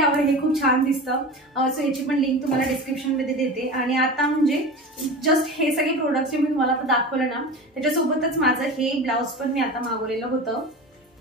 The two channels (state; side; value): normal; both; correlation 0.31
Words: हे खूप छान दिसतं. सो याची पण लिंक तुम्हाला डिस्क्रिप्शन मध्ये देते. आणि आता म्हणजे जस्ट हे सगळे प्रोडक्ट्स जे मी तुम्हाला आता दाखवलं ना त्याच्यासोबतच माझं हे ब्लाऊज पण मी आता मागवलेलं होतं.